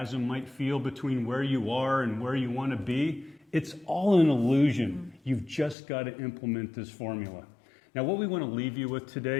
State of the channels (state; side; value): drops out; right; at 5.8 s